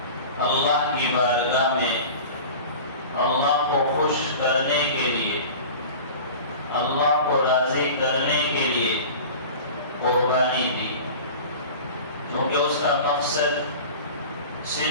اللہ کی بارگاہ میں اللہ کو خوش کرنے کے لیے، اللہ کو راضی کرنے کے لیے قربانی دی، کیونکہ اس کا مقصد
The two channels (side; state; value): both; inverted; correlation -0.37